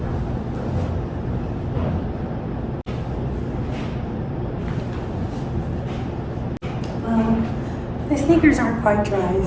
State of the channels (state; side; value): identical; both; correlation 1.00